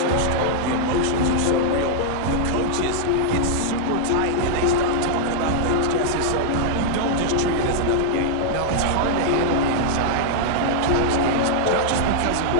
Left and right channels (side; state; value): both; different; correlation -0.01